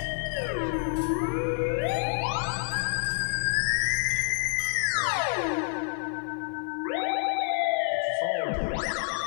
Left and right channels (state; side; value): silent; right; 59 dB below the other